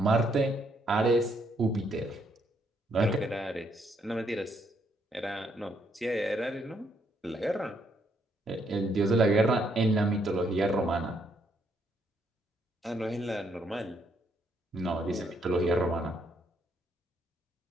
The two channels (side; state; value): both; normal; correlation 0.73